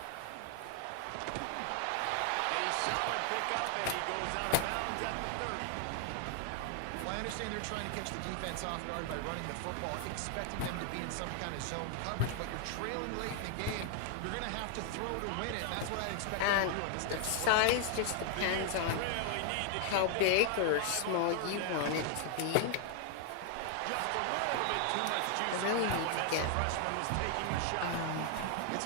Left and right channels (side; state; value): both; different; correlation 0.00